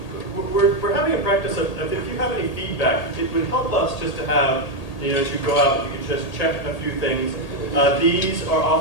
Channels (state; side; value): late; right; 1.8 ms